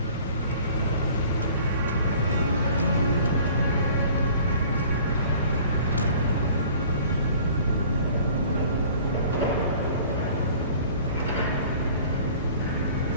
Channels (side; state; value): both; inverted; correlation -0.49